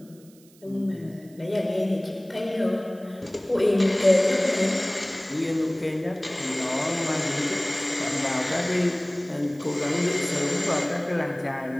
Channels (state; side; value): noise; right; hiss, 27 dB below the sound